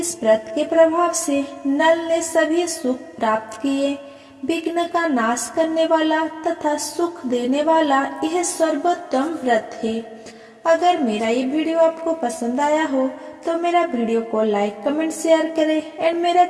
व्रत के प्रभाव से नल ने सभी सुख प्राप्त किए। विघ्न का नाश करने वाला तथा सुख देने वाला यह सर्वोत्तम व्रत है। अगर मेरा ये वीडियो आपको पसंद आया हो तो मेरा वीडियो को लाइक, कमेंट, शेयर करें एंड मेरा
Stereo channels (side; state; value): both; identical; correlation 1.00